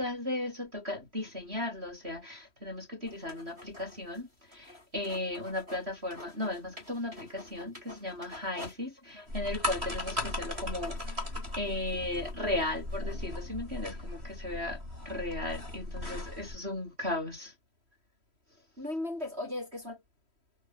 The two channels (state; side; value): late; left; 3.1 ms